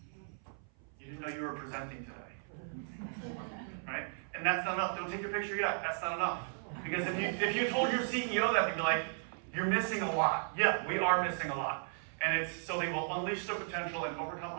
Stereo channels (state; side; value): silent; left; 54 dB below the other